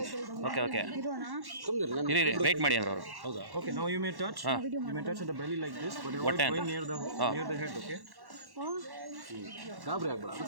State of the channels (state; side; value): late; left; 1.1 ms